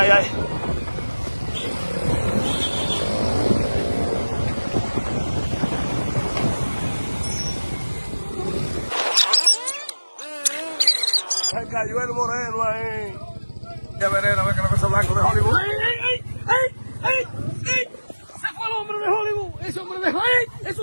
ay. Se cayó el moreno ahí. Ya veré, a ver que la cosa blanco de Hollywood. ¡Ey, ey, ey, ey, ey! ¡Se fue el hombre de Hollywood! ¡Ese hombre de Hollywood! ¡Ey! ¡Eso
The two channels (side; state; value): both; inverted; correlation -1.00